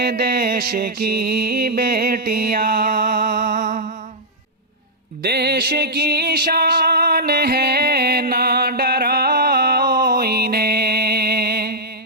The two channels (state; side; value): normal; both; correlation -0.09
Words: देश की बेटियां। देश की शान है ना डराओ